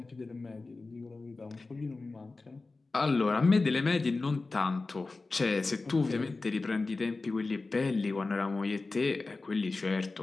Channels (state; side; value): quieter; right; 3.6 dB